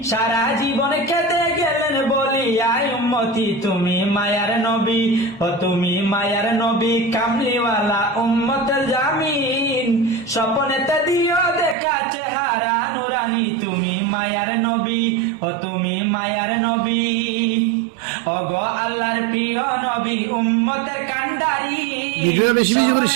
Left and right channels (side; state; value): left; drops out; at 11.8 s